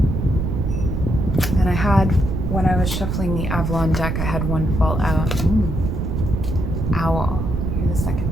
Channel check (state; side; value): noise; right; rumble, 1 dB below the sound